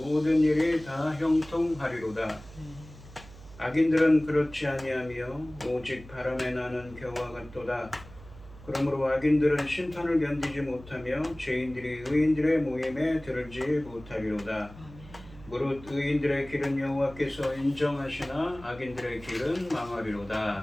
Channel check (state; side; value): noise; right; hum, 19 dB below the sound